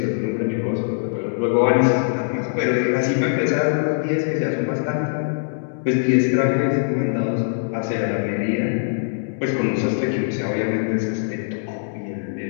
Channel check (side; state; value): right; silent; digital silence